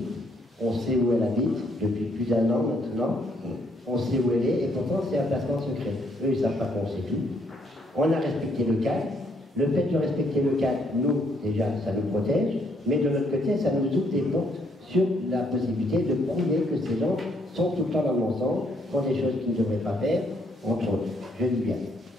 On sait où elle habite depuis plus d'1 an maintenant. On sait où elle est, et pourtant c'est un placement secret. Eux, ils ne savent pas qu'on sait tout. On a respecté le calme, Le fait de respecter le cadre, nous, déjà, ça nous protège, mais de l'autre côté, ça nous ouvre des portes sur la possibilité de prouver que ces gens sont tout le temps dans le mensonge, font des choses qu'ils ne devraient pas faire, entre autres. Je dis bien.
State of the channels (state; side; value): normal; both; correlation 0.70